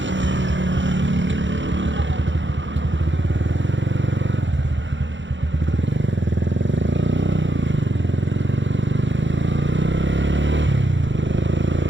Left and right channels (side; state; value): left; late; 0.54 ms